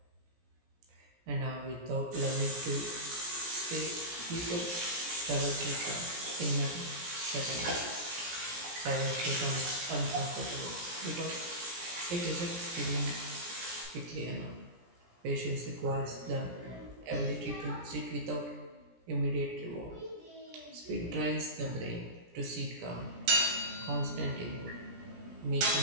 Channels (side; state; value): left; late; 17 ms